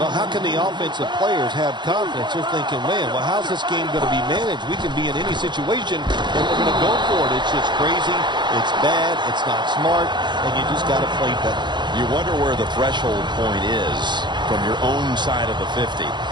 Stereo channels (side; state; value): left; late; 0.22 ms